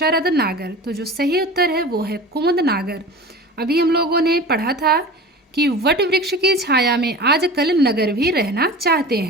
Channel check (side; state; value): both; normal; correlation 0.35